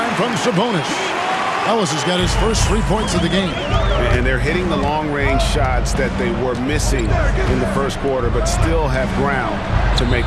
from Sabonis. Ellis has got his first 3 points of the game. And they're hitting the long-range shots that they were missing in the first quarter, but still have ground to make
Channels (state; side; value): identical; both; correlation 1.00